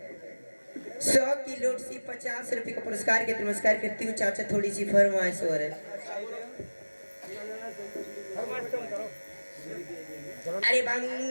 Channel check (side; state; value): both; inverted; correlation -1.00